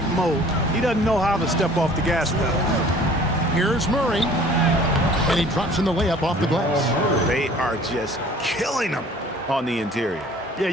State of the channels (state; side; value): normal; both; correlation 0.50